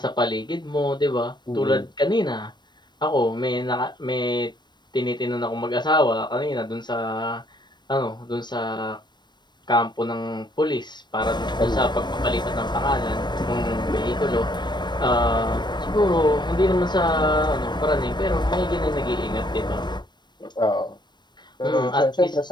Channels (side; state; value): right; late; 0.22 ms